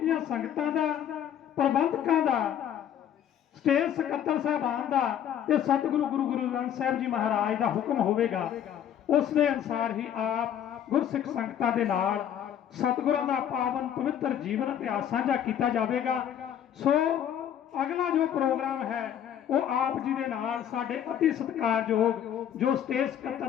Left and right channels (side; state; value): right; quieter; 9.8 dB